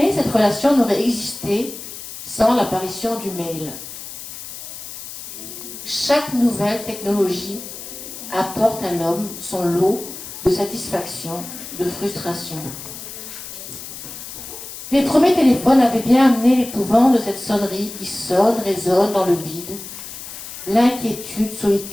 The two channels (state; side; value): noise; left; hiss, 11 dB below the sound